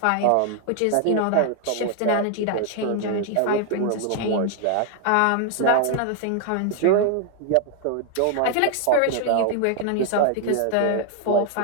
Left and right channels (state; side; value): different; both; correlation 0.00